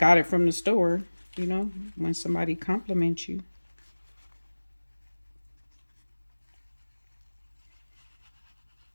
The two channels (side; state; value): both; inverted; correlation -1.00